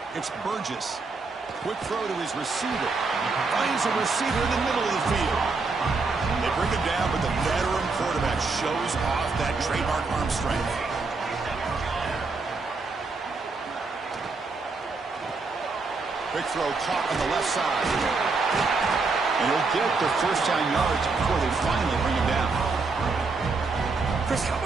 It's Burgess. Quick throw to his receiver. Finds a receiver in the middle of the field. They bring him down, but the veteran quarterback shows off that trademark arm strength. Quick throw caught on the left side. And he'll get the first down yards before they finally bring him down. Chris, how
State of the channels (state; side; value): quieter; left; 4.1 dB